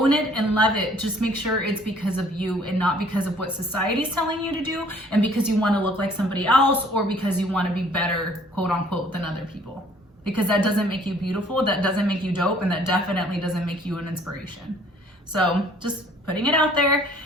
it and love it. Just make sure it's because of you and not because of what society's telling you to do and because you want to look like somebody else or because you want to be better, quote unquote, than other people. Because that doesn't make you beautiful, that doesn't make you dope, and that definitely doesn't make you an inspiration. So just putting it out there.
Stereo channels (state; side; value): normal; both; correlation 0.57